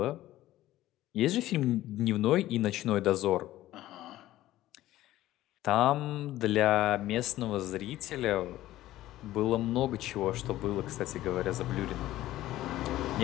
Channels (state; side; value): quieter; right; 15.1 dB